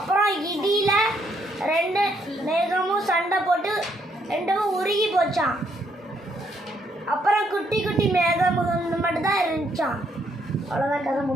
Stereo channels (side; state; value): both; normal; correlation 0.72